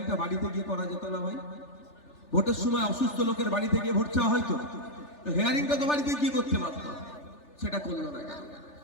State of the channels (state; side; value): late; right; 3.4 ms